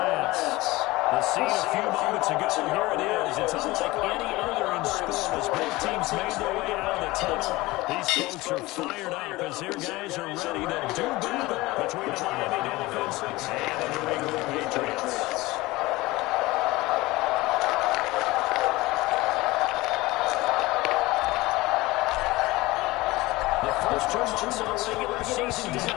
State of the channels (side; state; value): right; quieter; 20.3 dB